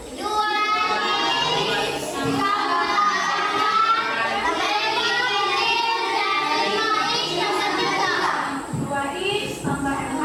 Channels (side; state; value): both; identical; correlation 1.00